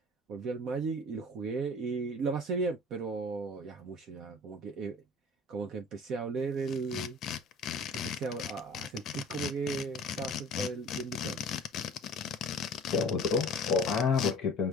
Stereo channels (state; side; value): normal; both; correlation 0.44